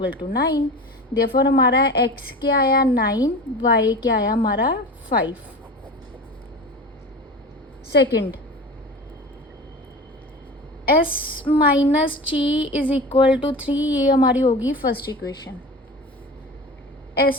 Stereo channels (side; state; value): both; normal; correlation 0.32